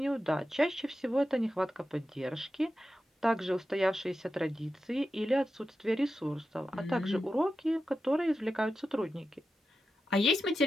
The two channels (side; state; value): both; normal; correlation 0.91